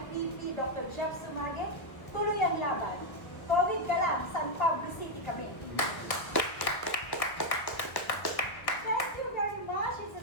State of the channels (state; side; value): late; right; 1.5 ms